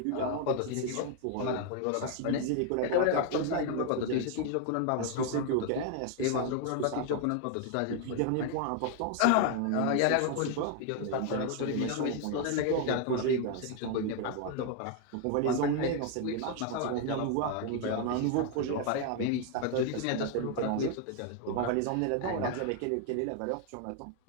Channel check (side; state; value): both; different; correlation 0.01